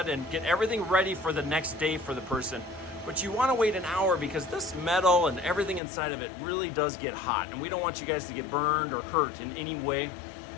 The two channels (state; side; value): drops out; right; at 5.8 s